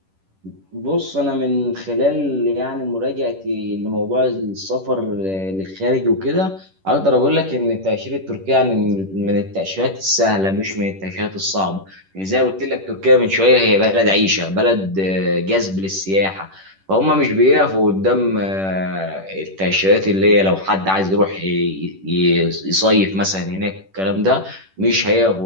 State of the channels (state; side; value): late; left; 10 ms